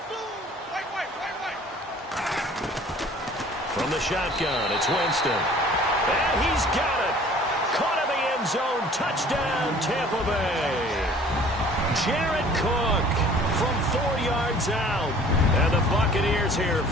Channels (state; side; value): normal; both; correlation 0.51